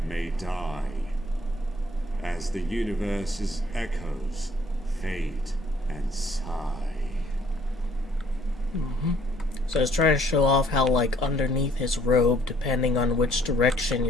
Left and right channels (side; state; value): both; normal; correlation 0.62